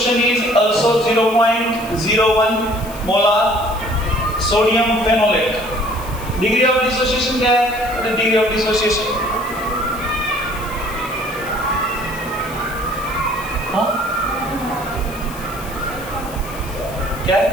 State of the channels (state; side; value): noise; left; hiss, 17 dB below the sound